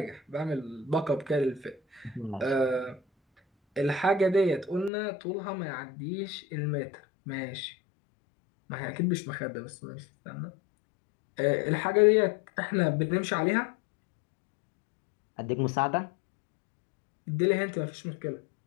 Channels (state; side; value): drops out; right; at 4.9 s